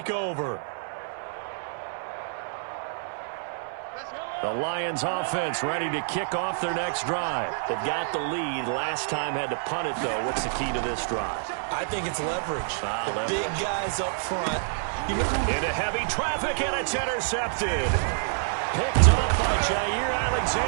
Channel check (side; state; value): left; silent; digital silence